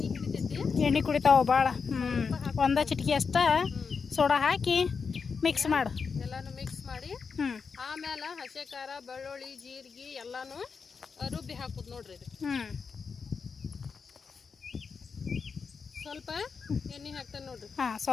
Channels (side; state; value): right; quieter; 5.5 dB